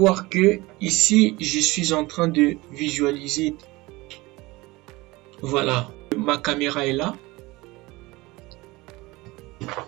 que ici, je suis en train de visualiser. Voilà, ma caméra est là.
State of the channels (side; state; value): left; quieter; 21.5 dB